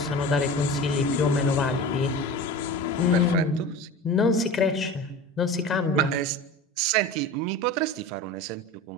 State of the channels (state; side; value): normal; both; correlation 0.33